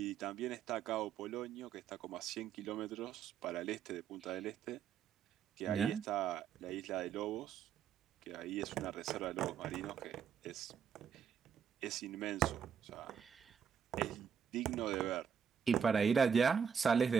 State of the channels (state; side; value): quieter; left; 7.4 dB